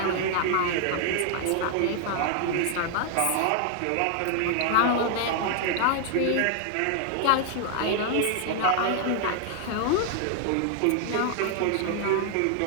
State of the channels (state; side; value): different; both; correlation 0.00